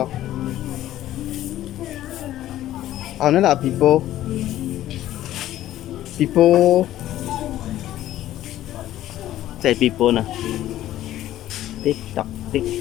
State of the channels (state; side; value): quieter; right; 13.5 dB